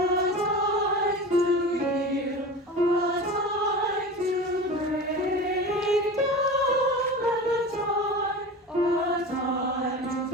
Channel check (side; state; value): both; normal; correlation 0.32